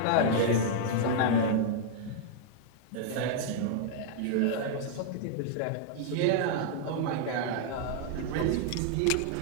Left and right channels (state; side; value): different; both; correlation -0.01